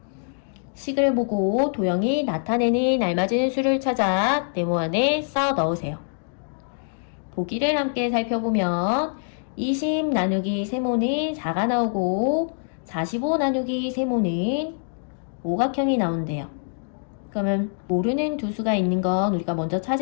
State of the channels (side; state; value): right; silent; digital silence